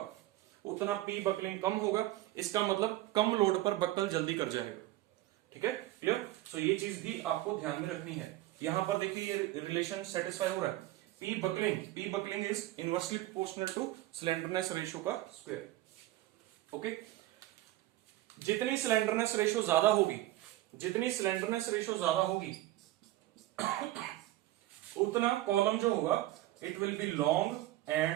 उतना पी बकलिंग कम होगा। इसका मतलब कम लोड पर बकल जल्दी कर जाएगा। ठीक है, क्लियर। सो ये चीज भी आपको ध्यान में रखनी है। यहां पर देखिए ये रिलेशन सेटिस्फाई हो रहा है। P buckling is inversely proportional to slenderness ratio का स्क्वायर। ओके, जितनी स्लेंडरनेस रेशो ज्यादा होगी, जितनी स्लेंडरनेस रेशो ज्यादा होगी उतना कॉलम जो होगा it will B long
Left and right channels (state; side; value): quieter; left; 16.2 dB